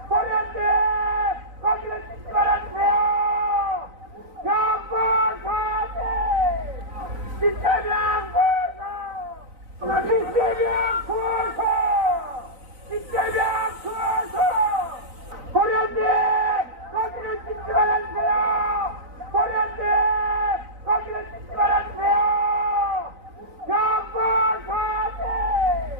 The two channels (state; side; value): late; left; 3.9 ms